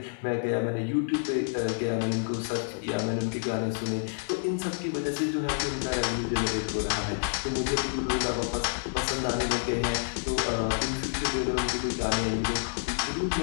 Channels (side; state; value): right; silent; 59 dB below the other